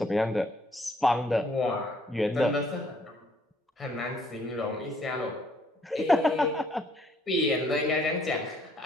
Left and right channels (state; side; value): normal; both; correlation 0.65